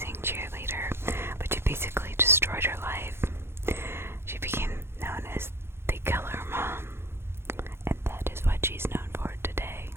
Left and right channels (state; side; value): late; left; 0.12 ms